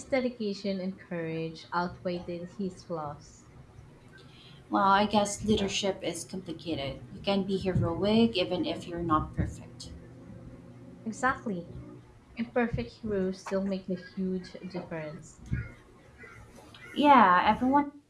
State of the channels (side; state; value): both; identical; correlation 1.00